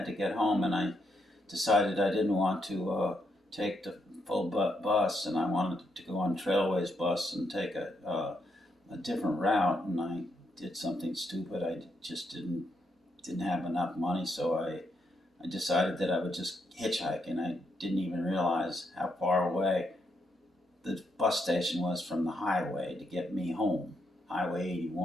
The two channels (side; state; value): both; normal; correlation 0.79